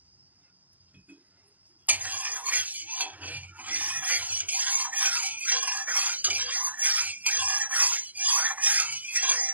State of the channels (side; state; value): left; late; 0.081 ms